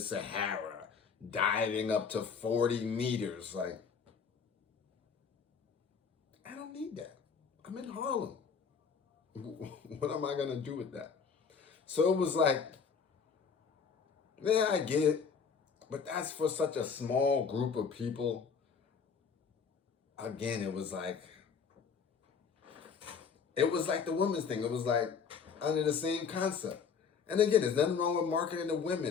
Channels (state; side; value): quieter; right; 6.1 dB